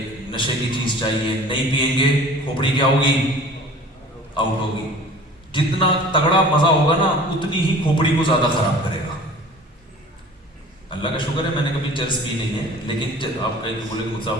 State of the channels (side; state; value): both; normal; correlation 0.44